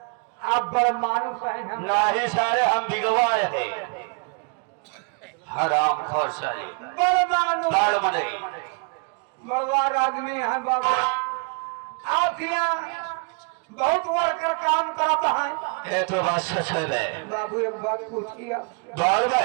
आप बड़ मानुस है नहीं सारे हम बिगवाए हैं हराम खोर सारे बड़ भगवान आदमी है बाबा। आप यहाँ बहुत वर्कर काम करता है। ये तो बात सच है बाबू। एक बात पूछिए बाल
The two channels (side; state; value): left; quieter; 35.1 dB